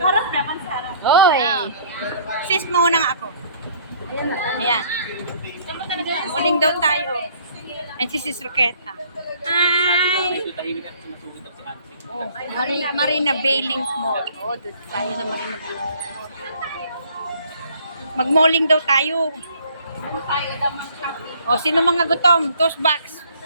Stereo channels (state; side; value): inverted; both; correlation -0.58